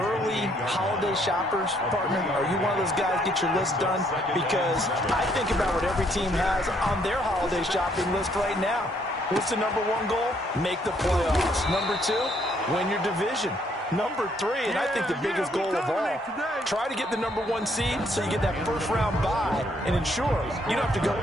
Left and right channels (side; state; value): both; normal; correlation 0.69